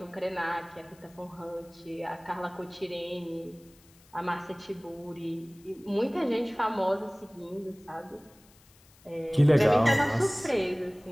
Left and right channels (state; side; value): noise; left; hiss, 28 dB below the sound